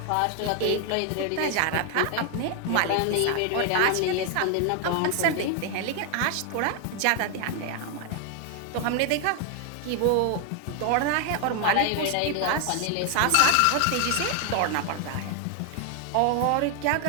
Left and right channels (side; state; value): both; different; correlation 0.00